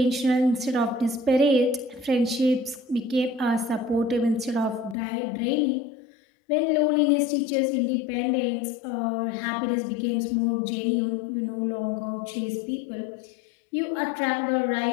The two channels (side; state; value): right; drops out; at 5.0 s